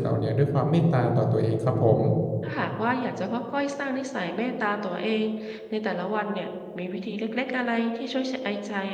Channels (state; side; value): identical; both; correlation 1.00